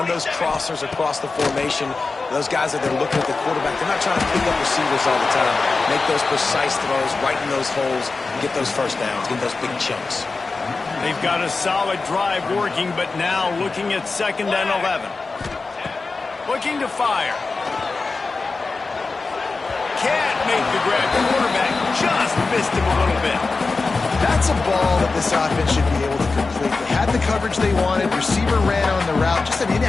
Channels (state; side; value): quieter; right; 4.0 dB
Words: those crossers across the formation. Those guys that are looking at the quarterback, they're not trying to pick up receivers all the time. Make those precise throws, right in those holes, and get those 1st downs, get those big chunks. They've got a solid drive working, but now looking at 2nd and 11. Looking to fire. Can't make the grab. The quarterback just missed him a little bit. That's a ball that this offense should be able to complete. They had the coverage they wanted. Receiver ran on the route. Just an